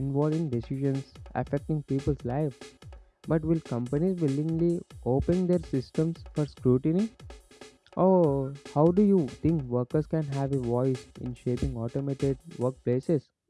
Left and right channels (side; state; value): both; identical; correlation 1.00